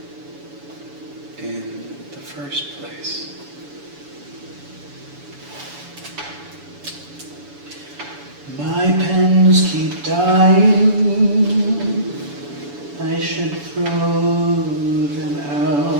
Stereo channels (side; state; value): left; late; 7.0 ms